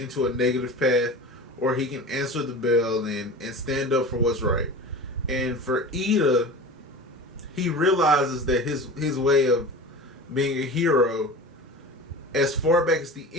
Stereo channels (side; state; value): both; normal; correlation 0.34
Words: a negative path, or he can answer the bell and stand up for what's right. And for Iida, he realizes that his way of being a hero, as far back as the